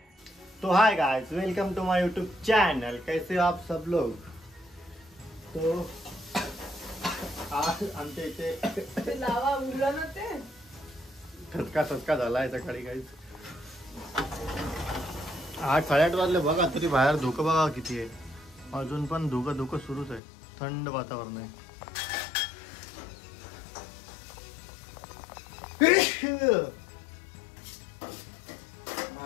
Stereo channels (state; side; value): drops out; right; at 20.2 s